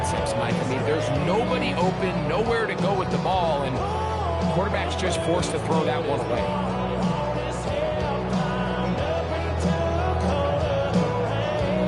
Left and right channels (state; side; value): identical; both; correlation 1.00